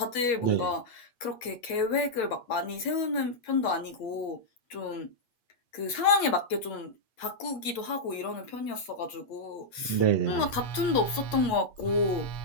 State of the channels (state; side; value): late; right; 8.4 ms